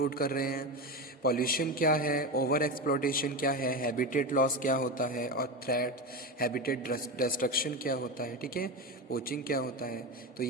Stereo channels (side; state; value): both; normal; correlation 0.20